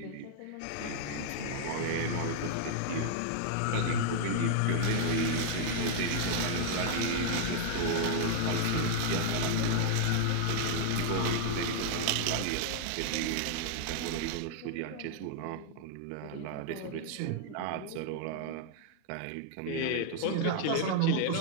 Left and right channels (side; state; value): both; different; correlation 0.00